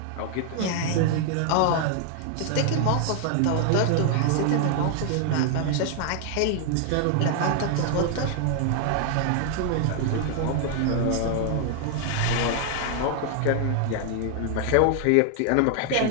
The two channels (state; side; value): different; both; correlation 0.00